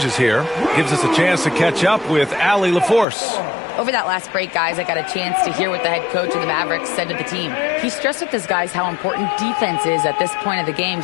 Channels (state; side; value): drops out; right; at 3.1 s